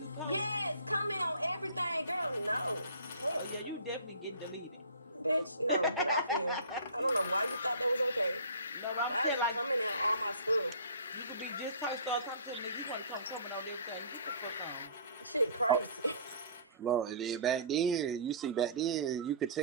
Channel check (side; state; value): both; inverted; correlation -0.45